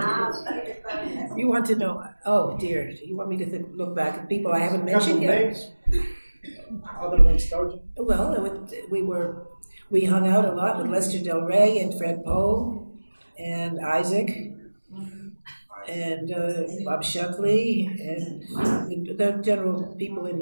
You want to know? Oh dear, you want me to look back at people I haven't mentioned yet? Other than Sturgeon? Well, we hung out a lot with Lester Del Rey and Fred Poe and Isaac and Bob Shuckley and the general people in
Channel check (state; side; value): inverted; both; correlation -1.00